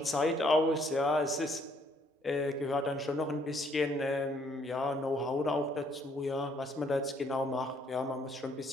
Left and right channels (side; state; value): both; normal; correlation 0.66